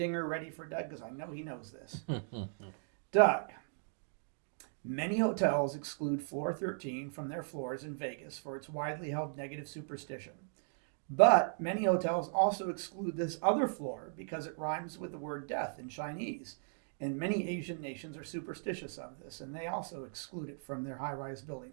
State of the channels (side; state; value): left; silent; digital silence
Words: ready for Doug, because I know he knows this. Doug, many hotels exclude floor 13 from their floors in Vegas for its widely held negative superstition. But many hotels also exclude this other floor because it rhymes with the word death in Chinese. And many Asian nations are superstitious of this, and they also exclude it from their high-rise